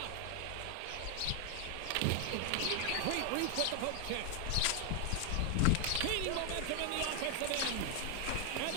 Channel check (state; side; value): different; both; correlation 0.00